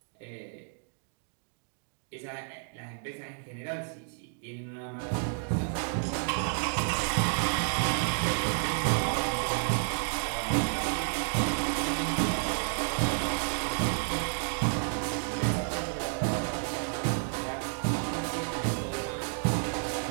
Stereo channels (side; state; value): left; silent; 57 dB below the other